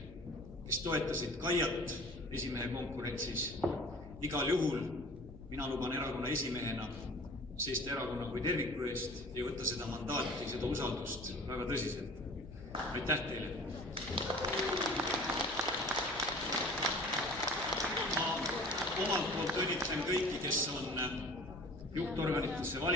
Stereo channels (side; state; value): right; noise; hum, 20 dB below the sound